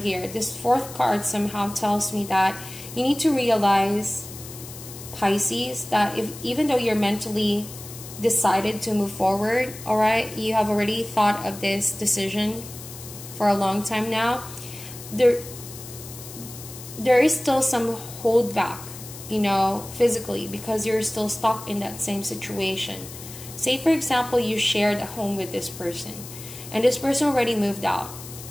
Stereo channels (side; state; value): left; noise; hiss, 14 dB below the sound